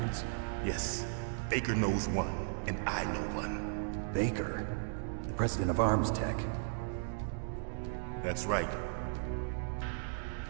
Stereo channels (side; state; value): left; silent; digital silence